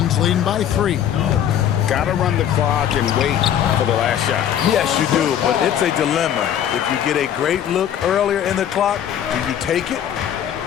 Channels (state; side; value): quieter; right; 10.0 dB